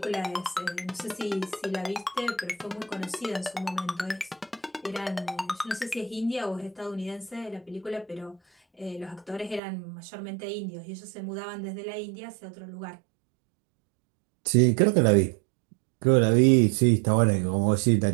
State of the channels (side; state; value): left; drops out; at 9.6 s